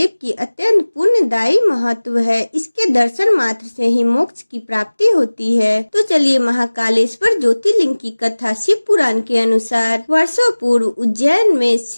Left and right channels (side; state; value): both; inverted; correlation -1.00